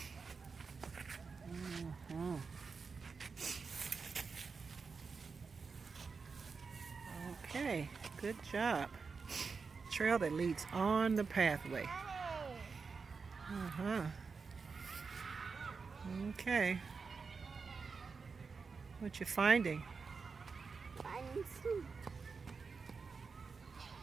Okay, good job. Trail that leads on the pathway. Okay. What you finding? Finding some.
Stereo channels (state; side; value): quieter; left; 5.0 dB